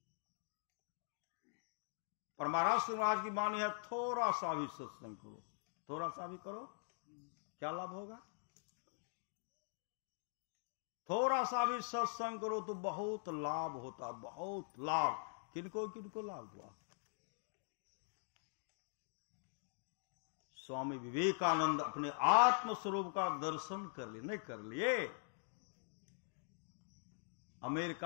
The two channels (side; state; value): right; silent; digital silence